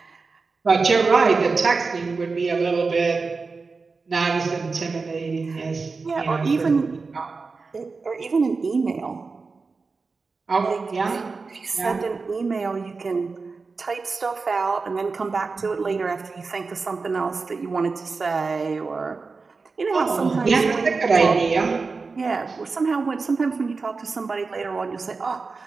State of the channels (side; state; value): left; quieter; 4.3 dB